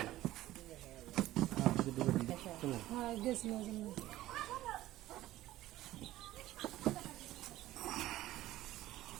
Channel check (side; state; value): left; quieter; 15.4 dB